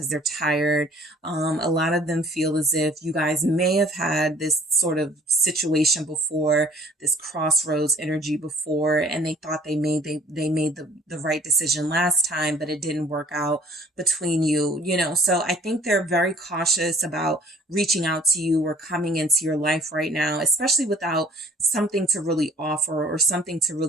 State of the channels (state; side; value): normal; both; correlation 0.54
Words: they're tired. A lot of them feel as if you guys may have had this sort of situation before, this crossroads energy before, and they thought they made the right decision last time, but it didn't work out between you, you know. So I think they're very cautious about reaching out to you or coming into your life right now, especially without something to really offer or something to